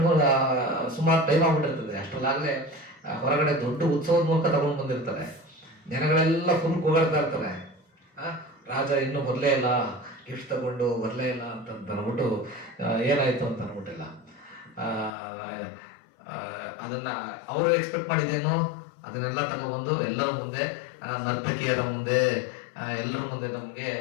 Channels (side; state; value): right; drops out; at 15.1 s